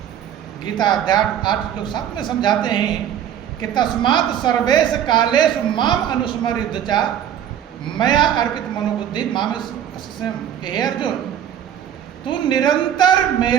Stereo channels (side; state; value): left; quieter; 9.9 dB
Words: गीता अध्याय 8 श्लोक 7 में समझाते हैं कि तस्मात् सर्वेश कालेषु माम अनुस्मर चा मया अर्पित मनोबुद्धि माम स्वयं। हे अर्जुन, तू निरंतर